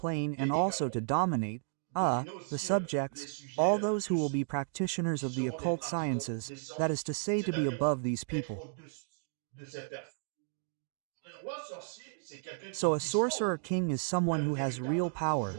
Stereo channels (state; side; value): silent; left; digital silence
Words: and also to dominate, the subjects, all those who will be practitioners of the occult sciences, that is to say, to be above these people. So a Sorcerer King is someone who has real power,